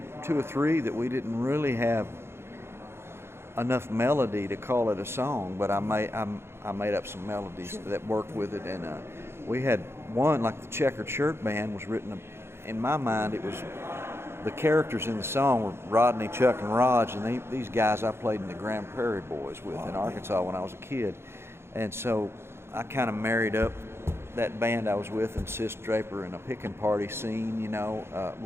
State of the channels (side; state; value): left; late; 0.12 ms